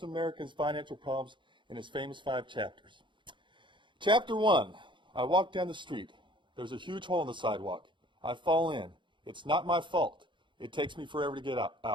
Americans' financial problems in his famous 5 chapters. Chapter 1, I walk down the street. There's a huge hole in the sidewalk. I fall in. It's not my fault. It takes me forever to get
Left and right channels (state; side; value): late; left; 0.23 ms